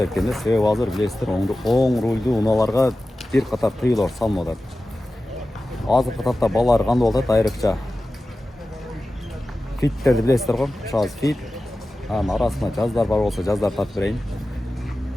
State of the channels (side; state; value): both; normal; correlation 0.95